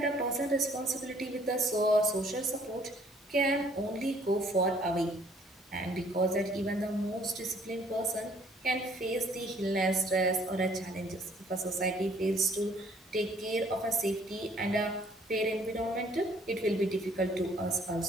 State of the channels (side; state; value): both; normal; correlation 0.60